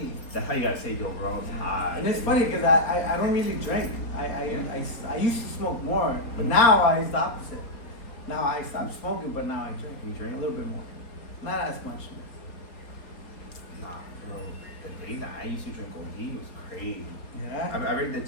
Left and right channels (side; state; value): right; late; 4.3 ms